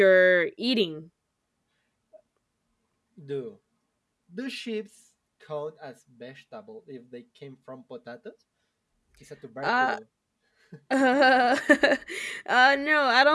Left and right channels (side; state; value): both; identical; correlation 1.00